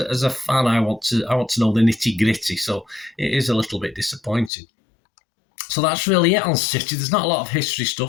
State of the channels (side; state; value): right; drops out; at 4.5 s